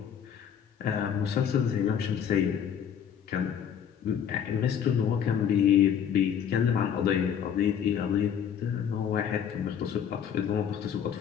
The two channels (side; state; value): right; quieter; 8.5 dB